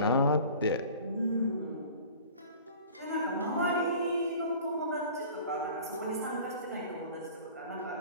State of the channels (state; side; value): inverted; both; correlation -0.44